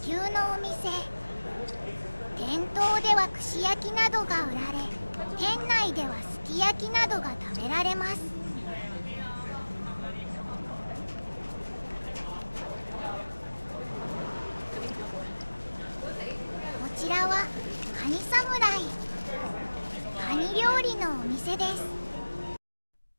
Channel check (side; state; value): both; inverted; correlation -1.00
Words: 牛のお店。店頭では串焼きなどが売られ、店内ではすき焼きなどが食べられます。こちらはカニ侍。カニ料理のお店です。